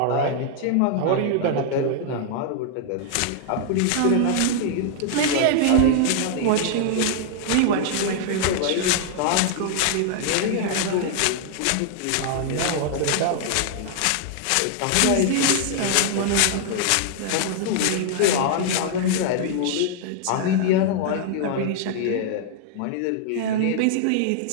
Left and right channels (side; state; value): both; different; correlation 0.00